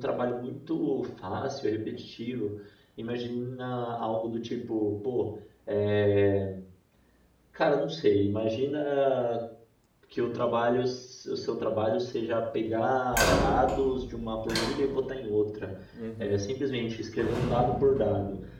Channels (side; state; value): both; identical; correlation 1.00